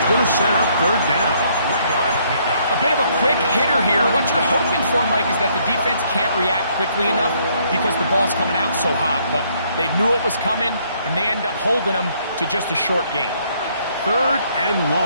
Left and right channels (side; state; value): both; inverted; correlation -0.68